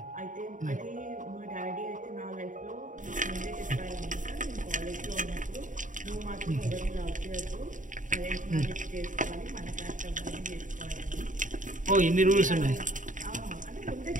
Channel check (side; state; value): left; late; 0.37 ms